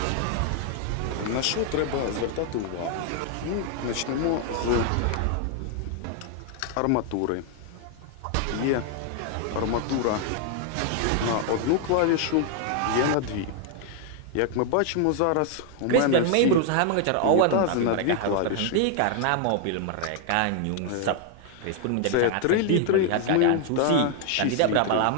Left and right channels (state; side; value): different; both; correlation 0.00